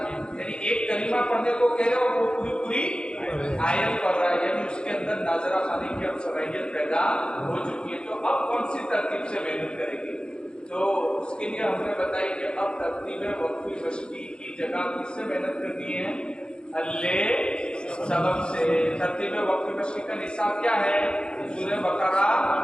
یعنی ایک کلمہ پڑھنے کو کہہ رہے اور وہ پوری آیت پڑھ رہا ہے، یعنی اس کے اندر ناظرہ خوانی کی اب صلاحیت پیدا ہو چکی ہے۔ تو اب کون سی ترتیب سے محنت کرے گی؟ تو اس کے لیے ہم نے بتائی کہ اب ترتیب وقفی مشقی کی جگہ کس سے محنت کرنی ہے؟ حل سبق سے۔ ترتیب وقفی مشقی کا نصاب کیا ہے؟ سورہ بقرہ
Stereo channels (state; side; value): late; right; 0.050 ms